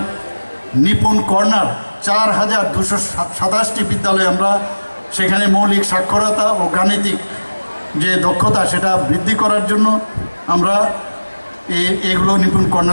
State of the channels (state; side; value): inverted; both; correlation -1.00